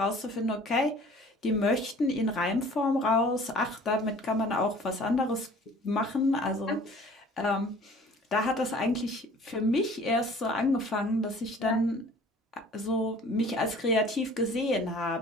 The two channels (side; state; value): both; normal; correlation 0.49